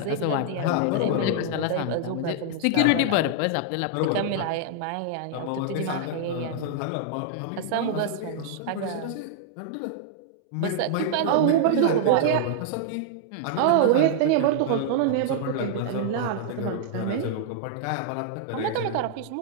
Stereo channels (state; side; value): different; both; correlation -0.01